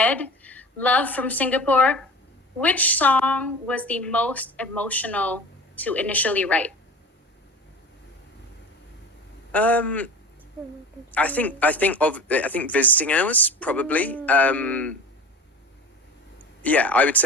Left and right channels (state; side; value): normal; both; correlation 0.36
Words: Love from Singapore. Which song was the most emotional to initially write?" I think Visiting Hours probably. Yeah, I would